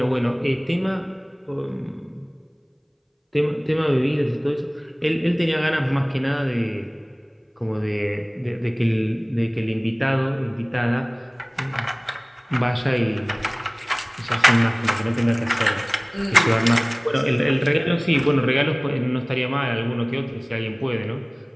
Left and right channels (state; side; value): identical; both; correlation 1.00